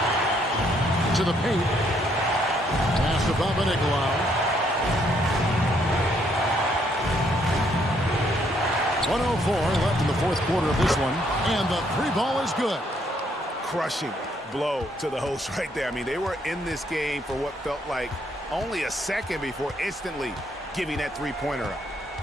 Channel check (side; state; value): both; normal; correlation 0.70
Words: To the paint. Pass to Papanikolaou. 1:04 left in the fourth quarter of this one. And the three ball is good. Crushing blow to the host right there. I mean, they were in this game for what felt like only a second before instantly giving that three-pointer up.